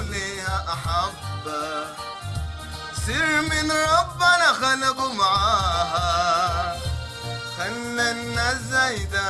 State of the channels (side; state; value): both; identical; correlation 1.00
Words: ليها أحبة، سر من ربنا خلقوا معاها، خلى الناس